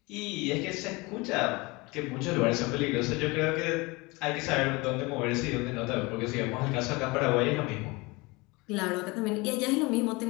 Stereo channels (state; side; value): quieter; right; 24.7 dB